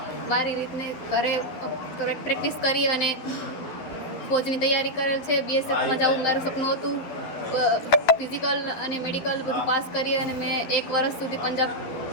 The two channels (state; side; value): late; right; 12 ms